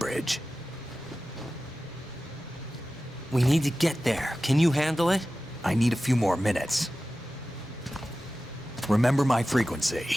We need to get there. Can you handle it? I need a few more minutes. Remember my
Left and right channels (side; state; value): both; normal; correlation 0.95